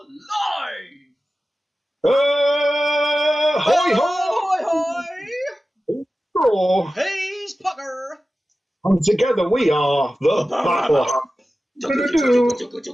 live! Hoi hoi hoi! hoi! He's Pucker! And together we are the Battle.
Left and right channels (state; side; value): normal; both; correlation 0.95